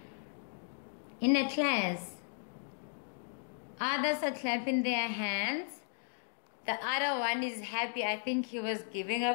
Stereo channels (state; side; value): silent; right; digital silence